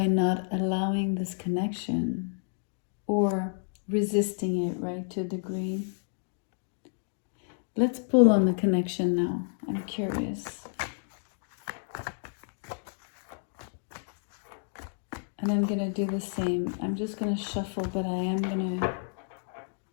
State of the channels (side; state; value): right; silent; digital silence